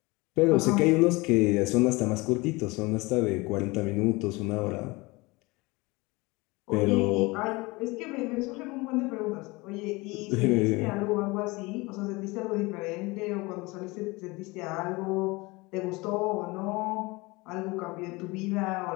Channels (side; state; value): right; quieter; 23.9 dB